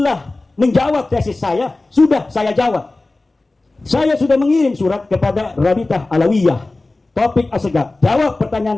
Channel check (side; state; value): right; quieter; 3.1 dB